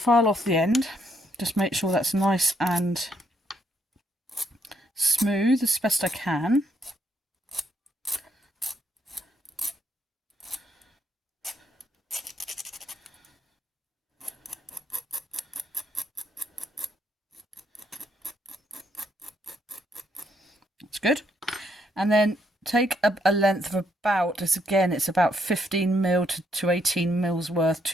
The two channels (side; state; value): both; normal; correlation 0.73